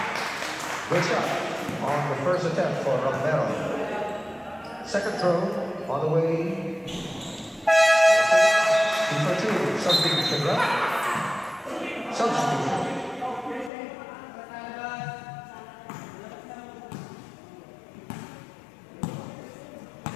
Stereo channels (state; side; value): drops out; right; at 13.7 s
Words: Good shot on the first attempt for Romero. Second throw on the way. 2 for 2. Substitution, right? Substitution.